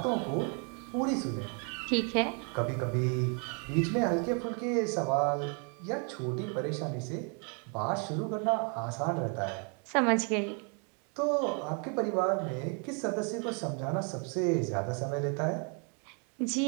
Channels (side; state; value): left; quieter; 38.7 dB